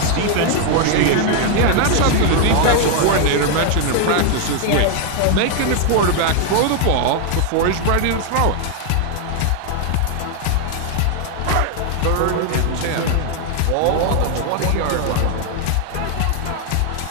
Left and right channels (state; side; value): different; both; correlation 0.00